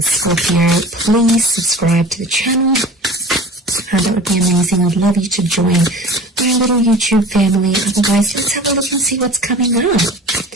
Scorpio. Please subscribe to the channel. That would be amazing. I'd love you to join my little YouTube family. Otherwise, let's have a look and see what's coming up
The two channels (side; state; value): both; normal; correlation 0.40